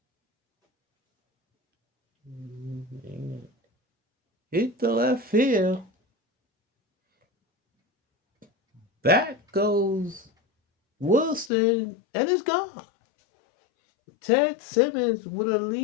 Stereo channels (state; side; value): drops out; right; at 11.5 s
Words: hit the left field. Back goes Wilson, and it's gone. Ted Simmons with a